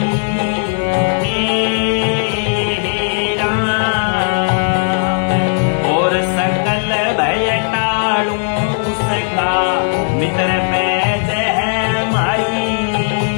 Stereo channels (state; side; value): silent; right; 69 dB below the other